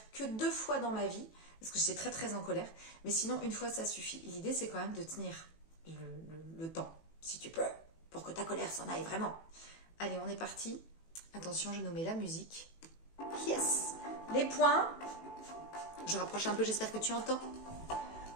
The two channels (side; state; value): right; late; 18 ms